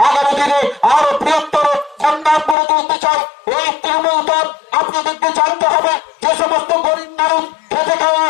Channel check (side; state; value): right; drops out; at 2.6 s